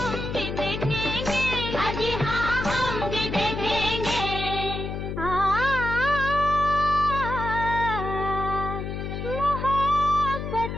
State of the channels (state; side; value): noise; left; hum, 5 dB below the sound